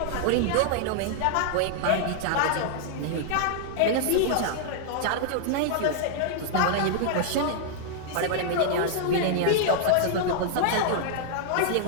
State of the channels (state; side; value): different; both; correlation -0.01